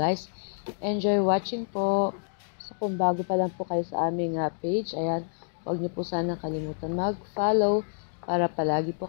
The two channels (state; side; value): silent; right; digital silence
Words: enjoy watching po. So kung bago pa lang po kayo sa aming page, ayan, huwag niyo po sana kalimutan mag-follow para palagi po